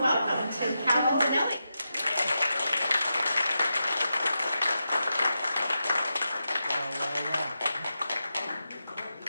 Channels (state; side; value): inverted; both; correlation -0.88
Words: welcome to Calvin Benelli.